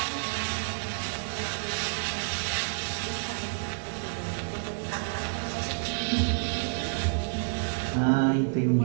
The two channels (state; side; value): silent; left; 58 dB below the other